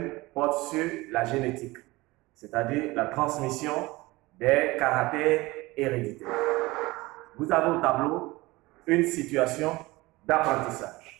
porte sur la génétique, c'est-à-dire la transmission des caractères héréditaires. Vous avez au tableau une situation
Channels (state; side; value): quieter; left; 21.1 dB